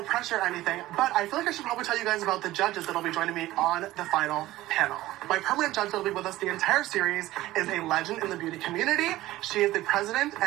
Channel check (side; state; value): left; quieter; 16.3 dB